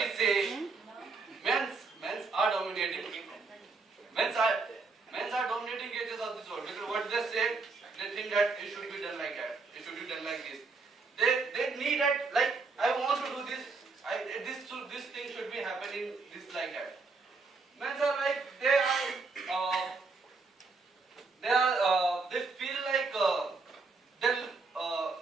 say, men's are dominating. Men's are dominating creatures of this world because what they say, they think that it should be done like that. It should be done like this. They need that, like, I want to do this. This thing should be happening this like that. Men's are like they feel like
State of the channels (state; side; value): quieter; left; 4.2 dB